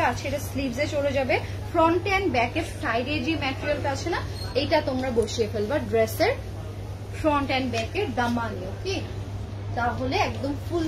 আছে এটা স্লিভসে চলে যাবে। ফ্রন্ট এন্ড ব্যাকের সাইডে যে ম্যাটেরিয়ালটা আছে না, এইটা তোমরা বসিয়ে ফেলবা ড্রেসের ফ্রন্ট এন্ড ব্যাকের দামানে। ওকে, তাহলে একদম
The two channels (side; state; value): both; identical; correlation 1.00